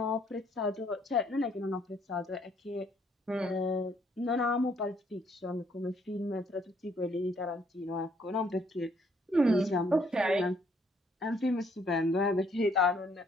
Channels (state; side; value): normal; both; correlation 0.67